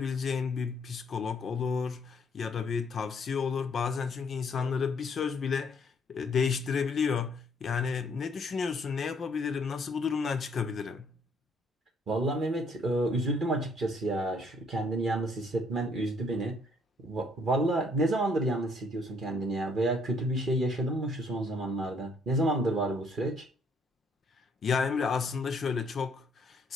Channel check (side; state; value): both; normal; correlation 0.66